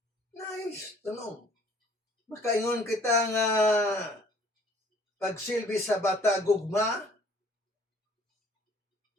Nice tanong. Makaingon kita nga pagsilbi sa bata gugma.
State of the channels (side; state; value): both; normal; correlation 0.57